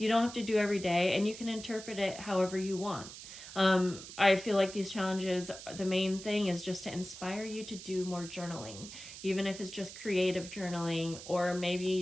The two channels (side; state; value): right; noise; hiss, 13 dB below the sound